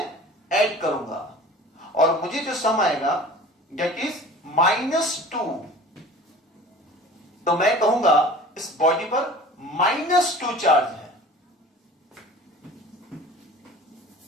ऐड करूंगा, और मुझे जो सम आएगा दैट इज -2। तो मैं कहूंगा इस बॉडी पर -2 चार्ज है,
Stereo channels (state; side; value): normal; both; correlation 0.42